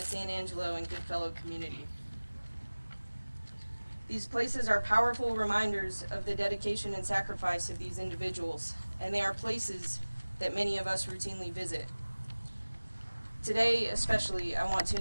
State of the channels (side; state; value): both; inverted; correlation -1.00